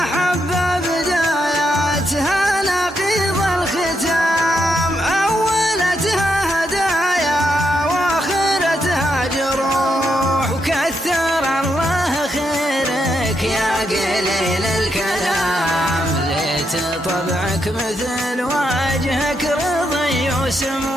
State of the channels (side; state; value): both; normal; correlation 0.80